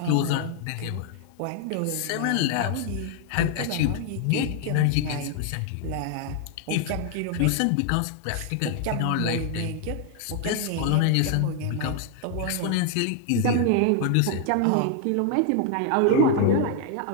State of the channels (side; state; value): both; different; correlation 0.00